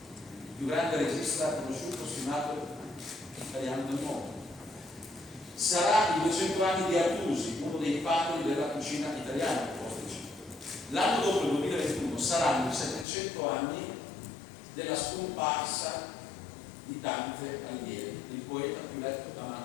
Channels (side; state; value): right; drops out; at 13.1 s